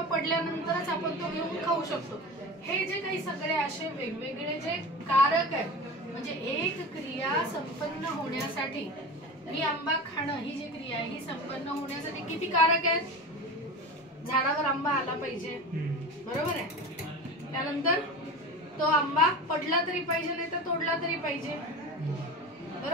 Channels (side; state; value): both; normal; correlation 0.30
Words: पडल्यानंतरच आपण तो घेऊन खाऊ शकतो. हे जे काही सगळे असे वेगवेगळे जे कारक आहेत, म्हणजे एक क्रिया संपन्न होण्यासाठी, ही आंबा खाणं ही जी क्रिया आहे ही संपन्न होण्यासाठी किती कारक आहेत. झाडावर आंबा आला पाहिजे, बरोबर आहे. त्यानंतर तो आंबा पडला तरी पाहिजे, नाही तर तोडला तरी पाहिजे,